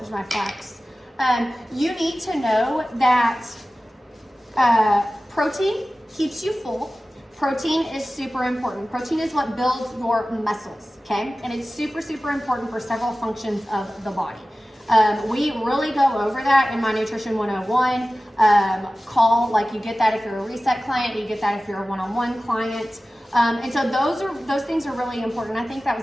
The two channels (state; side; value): normal; both; correlation 0.96